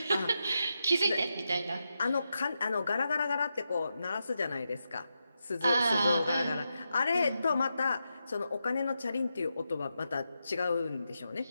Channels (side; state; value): both; inverted; correlation -0.87